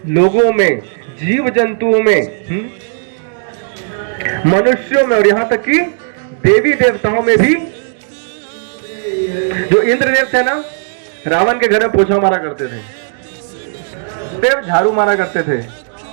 लोगों में, जीव जंतुओं में, मनुष्यों में और यहां तक कि देवी देवताओं में भी। जो इंद्रदेव थे ना, रावण के घर में पोछा मारा करते थे, देव झाड़ू मारा करते थे,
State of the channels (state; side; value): silent; left; digital silence